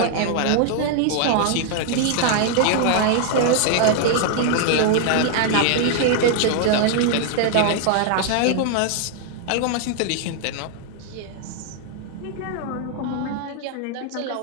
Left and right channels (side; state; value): both; different; correlation 0.00